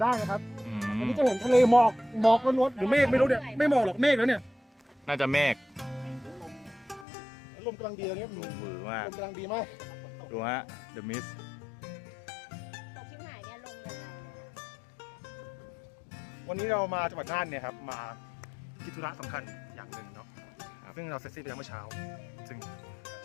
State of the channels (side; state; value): right; drops out; at 7.1 s